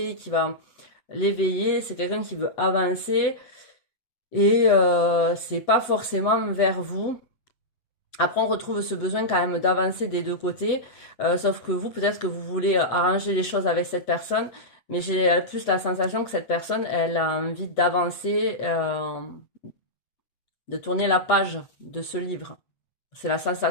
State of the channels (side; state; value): right; late; 7.9 ms